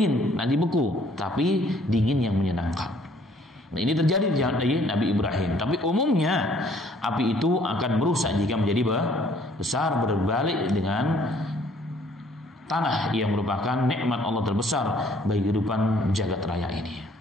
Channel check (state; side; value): normal; both; correlation 0.60